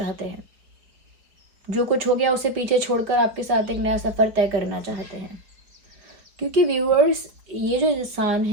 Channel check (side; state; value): left; late; 4.7 ms